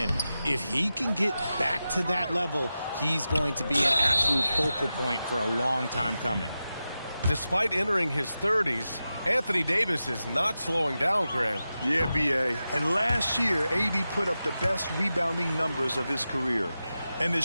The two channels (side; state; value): both; inverted; correlation -0.92